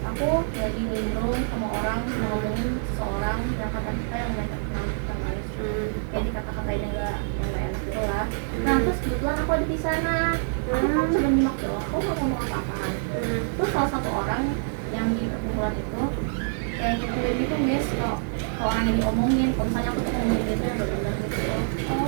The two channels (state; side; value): silent; left; 56 dB below the other